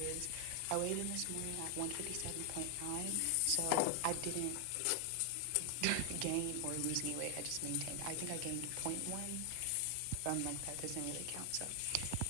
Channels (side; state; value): both; different; correlation 0.00